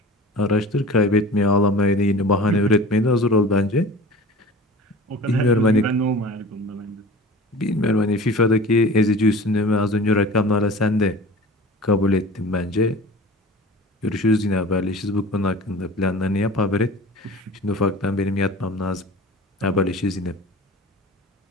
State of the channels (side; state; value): both; normal; correlation 0.39